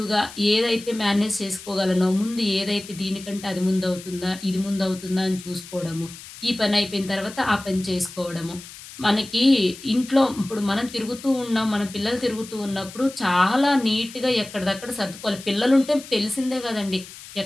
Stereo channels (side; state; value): left; noise; hiss, 16 dB below the sound